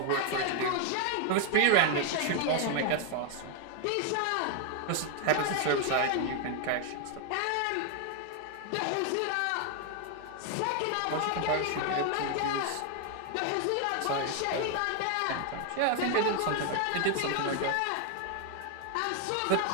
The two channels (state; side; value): different; both; correlation 0.00